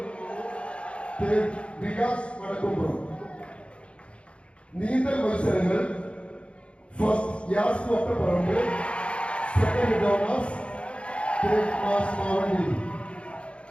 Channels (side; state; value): right; late; 0.059 ms